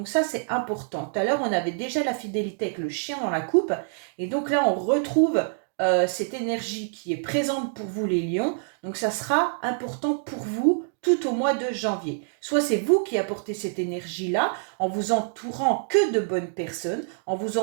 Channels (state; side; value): silent; left; digital silence